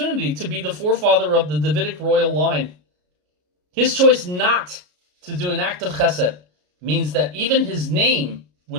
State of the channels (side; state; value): left; late; 33 ms